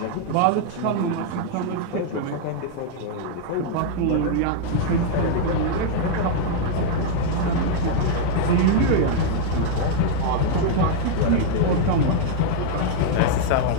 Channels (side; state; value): both; different; correlation 0.00